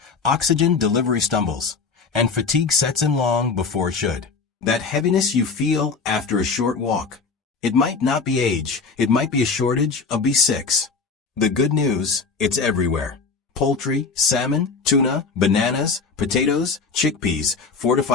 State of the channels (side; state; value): right; quieter; 4.8 dB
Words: oxygen delivery stumbles, and fatigue sets in long before it should. That heaviness you feel after a short walk. It might not be age, it might be a shortage of B6. The good news, it's everywhere. poultry, salmon, tuna, bananas, potatoes, chickpeas,